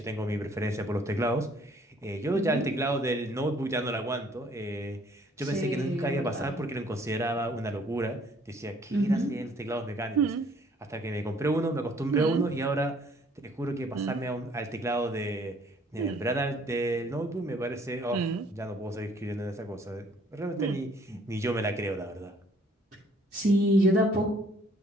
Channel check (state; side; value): normal; both; correlation 0.60